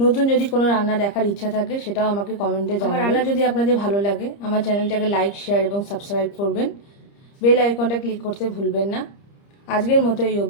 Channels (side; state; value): right; late; 30 ms